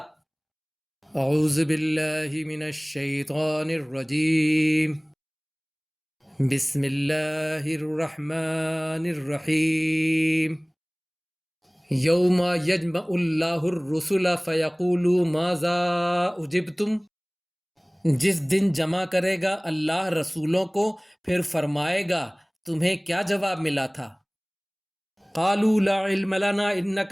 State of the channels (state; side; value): identical; both; correlation 1.00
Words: اعوذ باللہ من الشیطان الرجیم، بسم اللہ الرحمن الرحیم۔ یوم یجمع اللہ الرسل فیقول ماذا اجبتم، جس دن جمع کرے گا اللہ رسولوں کو پھر فرمائے گا تمہیں کیا جواب ملا تھا۔ قالوا لا علم لنا انک